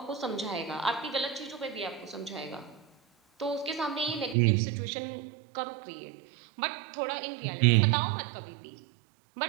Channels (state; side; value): drops out; left; at 4.4 s